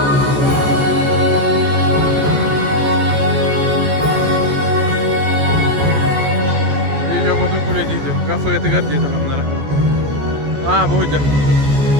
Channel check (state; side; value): late; left; 14 ms